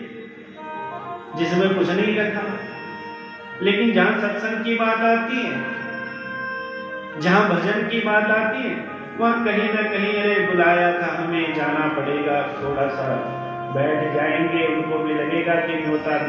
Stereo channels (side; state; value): both; identical; correlation 1.00